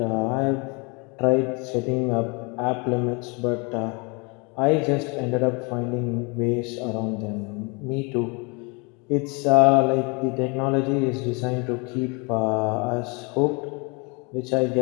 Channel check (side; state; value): right; quieter; 30.4 dB